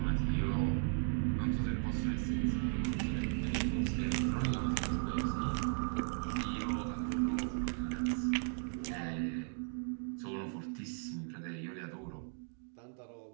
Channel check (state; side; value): silent; left; 53 dB below the other